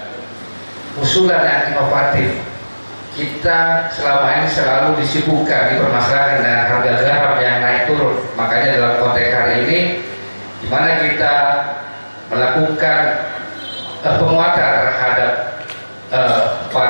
usulan yang inovatif. Kita selama ini selalu disibukkan di permasalahan dengan harga garam yang naik turun. Makanya dalam konteks hari ini, di mana kita melakukan penguatan terhadap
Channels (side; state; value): both; inverted; correlation -1.00